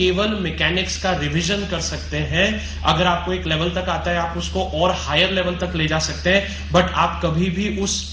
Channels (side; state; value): both; identical; correlation 1.00